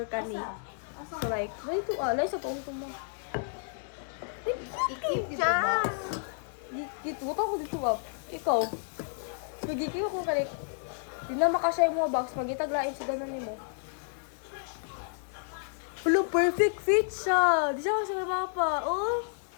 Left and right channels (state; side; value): silent; right; 57 dB below the other